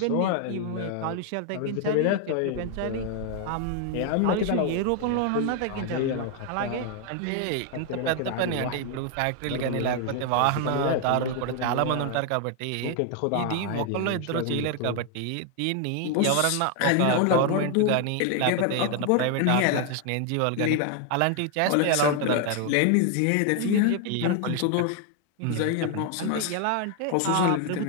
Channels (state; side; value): different; both; correlation 0.00